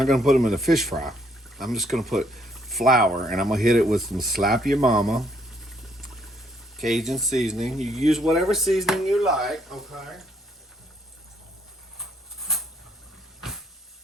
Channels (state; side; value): normal; both; correlation 0.68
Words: going to put them in a fish fry. I'm just going to put flour, and I'm going to hit it with some Slap Your Mama Cajun seasoning. You use whatever seasoning you like. Okay. I'm